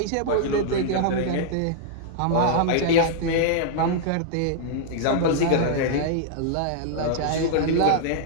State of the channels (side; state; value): both; different; correlation -0.01